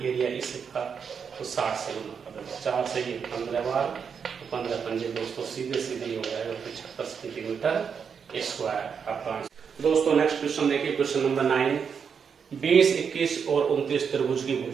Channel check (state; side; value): quieter; left; 6.6 dB